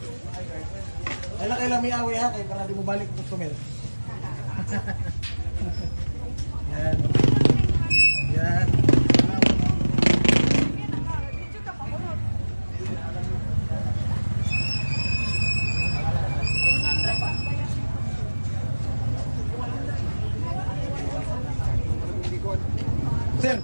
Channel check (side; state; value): both; inverted; correlation -1.00